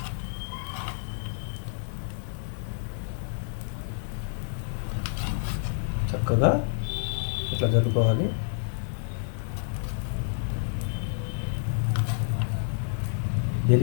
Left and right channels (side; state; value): right; silent; digital silence